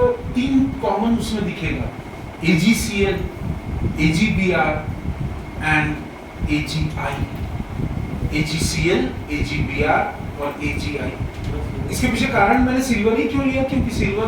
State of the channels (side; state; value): both; identical; correlation 1.00